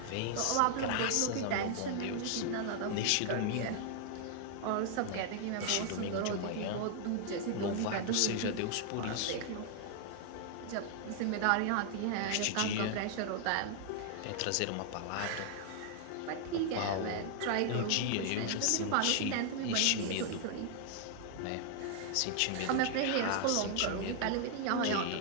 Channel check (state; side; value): different; both; correlation 0.00